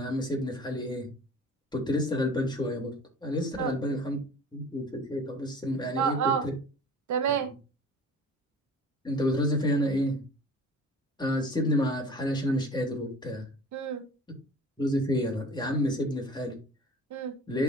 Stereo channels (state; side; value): normal; both; correlation 0.42